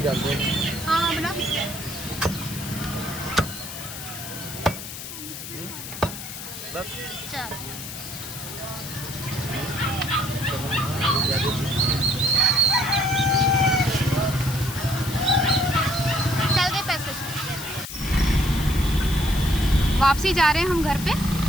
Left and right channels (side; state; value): left; noise; hiss, 10 dB below the sound